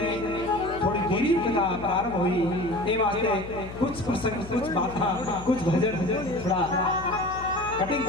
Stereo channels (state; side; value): noise; left; hum, 14 dB below the sound